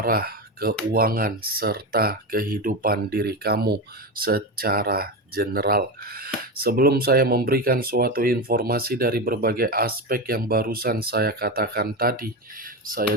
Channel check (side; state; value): both; normal; correlation 0.18